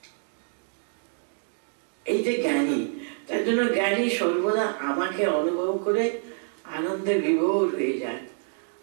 এই যে জ্ঞানী, তার জন্য জ্ঞানী সর্বদা আমাকে অনুভব করে আনন্দে বিভোর হয়ে যায়,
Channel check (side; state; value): left; silent; 57 dB below the other